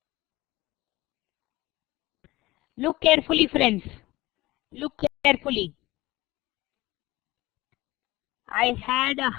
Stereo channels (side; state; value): right; quieter; 19.3 dB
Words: Look carefully, friends. Look carefully. I had a